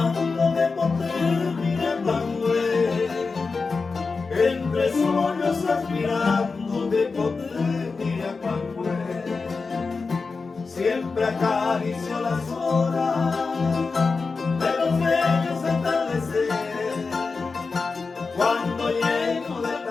de poder mirando él. Entre sueños aspirando de poder mirar cuando él. Siempre acaricio las horas de los bellos atardeceres, cuando lleno de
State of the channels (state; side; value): quieter; right; 4.4 dB